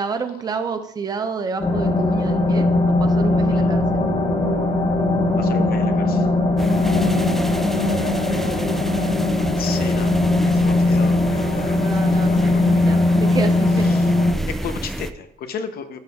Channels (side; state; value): both; normal; correlation 0.78